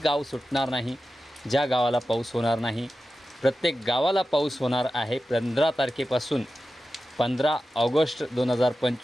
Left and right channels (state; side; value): normal; both; correlation 0.93